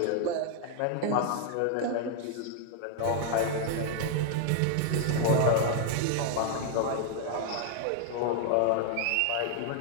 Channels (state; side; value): different; both; correlation 0.00